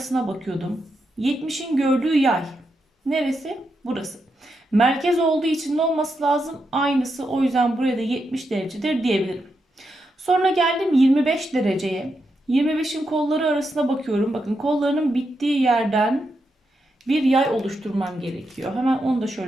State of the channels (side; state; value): both; normal; correlation 0.84